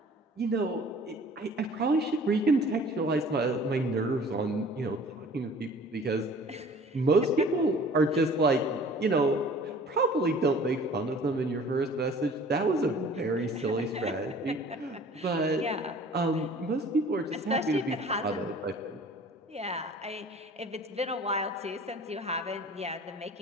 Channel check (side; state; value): both; normal; correlation 0.48